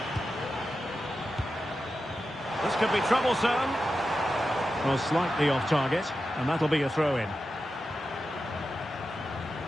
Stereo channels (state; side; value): normal; both; correlation 0.91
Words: This could be troublesome. Well, slightly off target, and that'll be a throw-in.